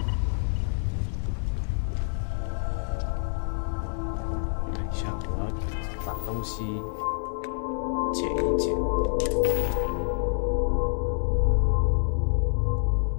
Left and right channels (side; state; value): right; silent; digital silence